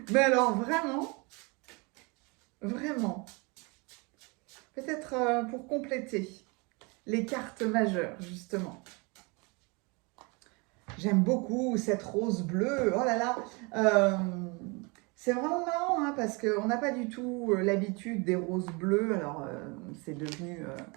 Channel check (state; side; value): quieter; left; 29.3 dB